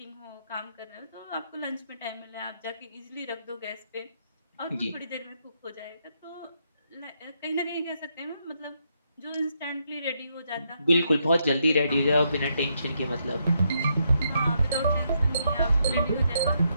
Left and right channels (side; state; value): both; inverted; correlation -0.78